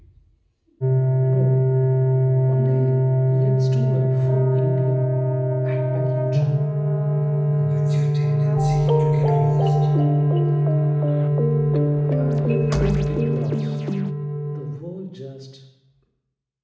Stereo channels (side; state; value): both; identical; correlation 1.00